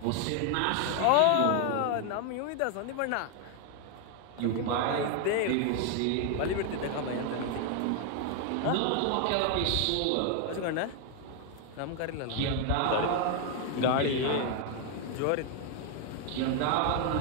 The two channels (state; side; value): different; both; correlation 0.00